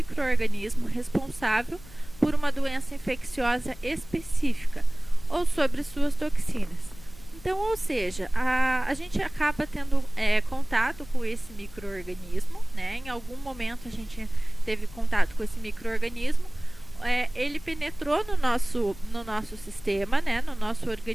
responsável por uma doença infecciosa específica ou sobre suas toxinas. Então, ou seja, a gente acaba tendo contato com esse micro-organismo, né? Em algum momento a gente teve contato com esse micro-organismo, ele penetrou no nosso sistema, né? No nosso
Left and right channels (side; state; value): left; noise; rumble, 20 dB below the sound